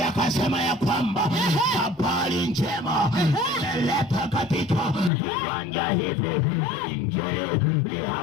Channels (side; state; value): right; drops out; at 5.1 s